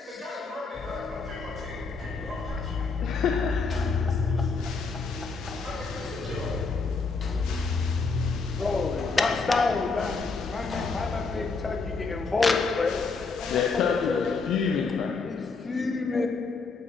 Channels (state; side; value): quieter; right; 4.4 dB